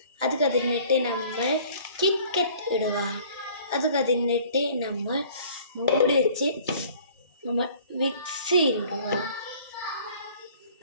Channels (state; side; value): inverted; both; correlation -0.52